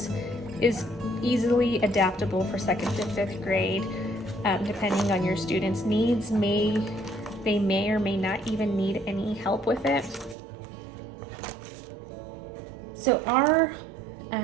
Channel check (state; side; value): drops out; left; at 10.4 s